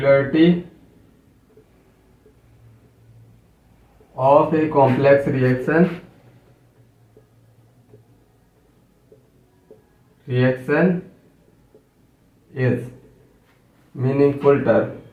of a complex reaction is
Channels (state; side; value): identical; both; correlation 1.00